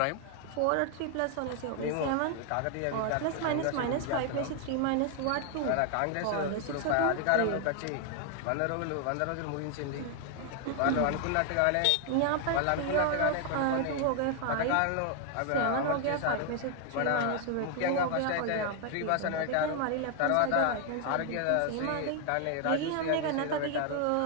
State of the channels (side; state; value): both; different; correlation 0.00